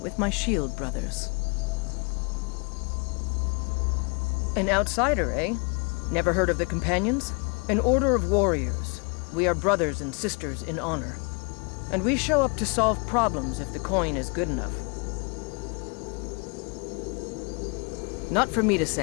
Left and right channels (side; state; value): right; quieter; 33.2 dB